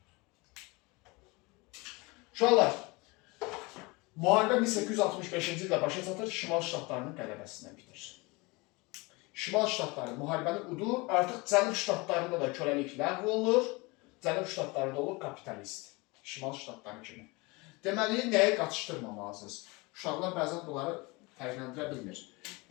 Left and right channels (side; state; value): right; quieter; 25.4 dB